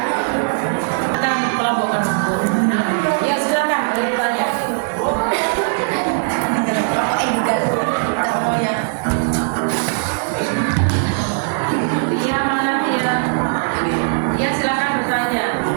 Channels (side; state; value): left; silent; digital silence